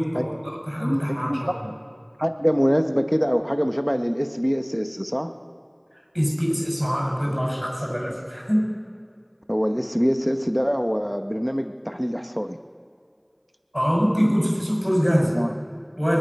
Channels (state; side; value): identical; both; correlation 1.00